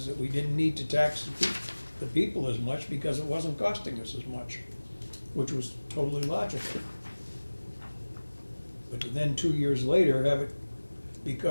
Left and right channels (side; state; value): both; inverted; correlation -1.00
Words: that we didn't need to tax the people as much because it wasn't costing us as much, which was totally logical. But then 2 years later, have it be